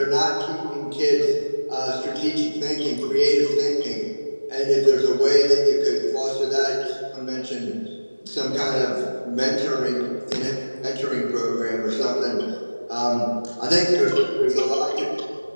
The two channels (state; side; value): inverted; both; correlation -1.00